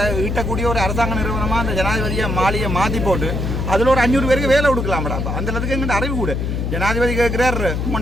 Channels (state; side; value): noise; left; hum, 1 dB below the sound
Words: ஈட்டக்கூடிய ஒரு அரசாங்க நிறுவனமாக அந்த ஜனாதிபதியை மாளிகையை மாற்றி போட்டு அதில் ஒரு 500 பேருக்கு வேலை கொடுக்கலாம்டா. அந்த அளவுக்கு எங்கள்கிட்ட அறிவு கூட. ஜனாதிபதி கேட்குறார்